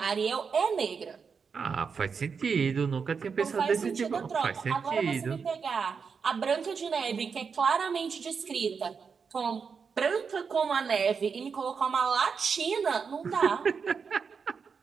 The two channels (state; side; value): quieter; left; 5.8 dB